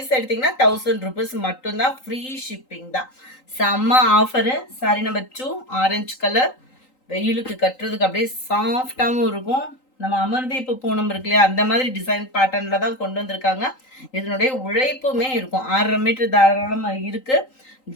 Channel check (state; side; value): late; right; 3.8 ms